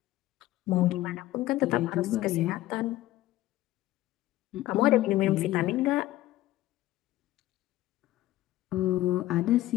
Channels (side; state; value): right; quieter; 15.7 dB